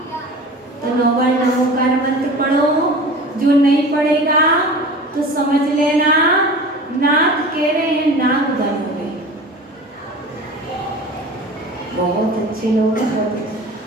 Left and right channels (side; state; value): both; normal; correlation 0.37